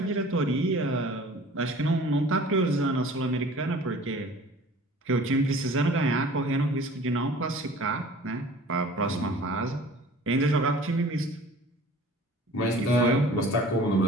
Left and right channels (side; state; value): both; normal; correlation 0.46